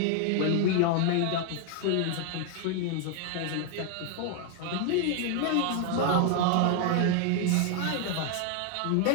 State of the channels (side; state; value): both; different; correlation 0.00